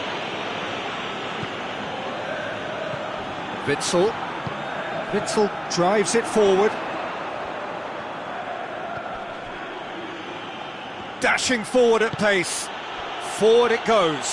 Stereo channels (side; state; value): both; identical; correlation 1.00